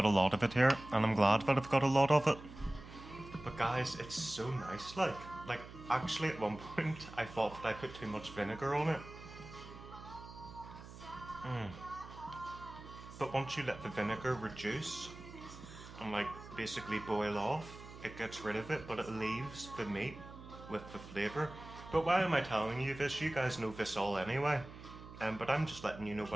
a lot of it here, and I'm glad that I've got a lot of it. But guys, it's so nice. Like actually at one point I thought that I put too much vinegar on it. But once you let the vinegar reduce and like basically boil off, it gets rid of it, but it leaves the meat with the flavour. But why am I telling you this? You guys know this all anyway. But I'm just letting you know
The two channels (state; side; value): noise; right; hum, 15 dB below the sound